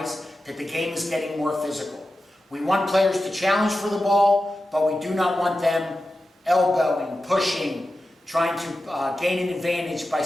that the game is getting more physical. We want players to challenge for the ball, but we do not want them elbowing, pushing, trying to gain an advantage by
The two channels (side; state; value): both; normal; correlation 0.92